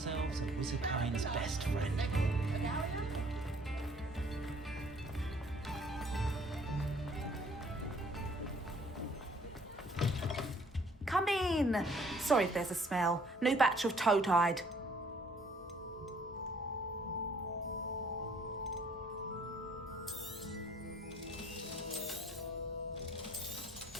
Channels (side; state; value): both; normal; correlation 0.60